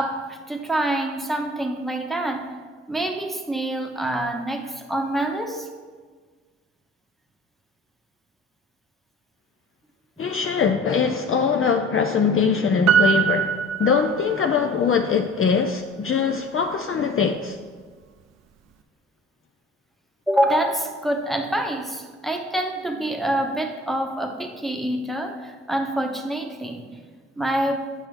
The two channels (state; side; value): normal; both; correlation 0.48